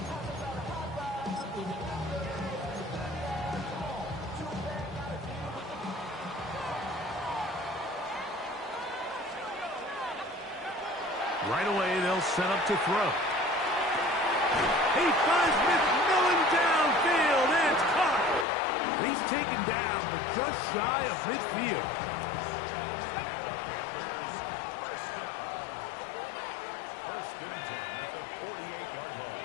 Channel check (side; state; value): right; drops out; at 18.4 s